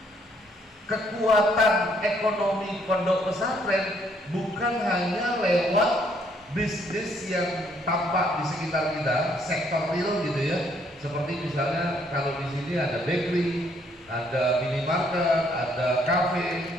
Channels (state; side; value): normal; both; correlation 0.68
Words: kekuatan ekonomi pondok pesantren bukan hanya lewat bisnis yang tampak di sekitar kita, sektor real gitu ya. Seperti misalnya kalau di sini ada bakery, ada minimarket, ada kafe,